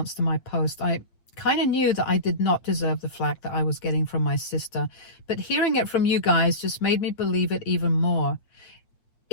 to my post. I kind of knew that I did not deserve the flack that I was getting from my sister, but hearing it from you guys just made me believe it even more.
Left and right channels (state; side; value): late; right; 8.8 ms